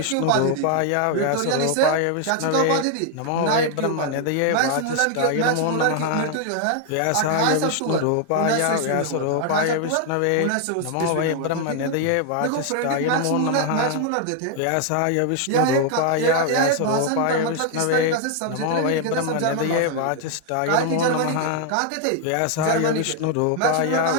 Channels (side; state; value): both; different; correlation 0.00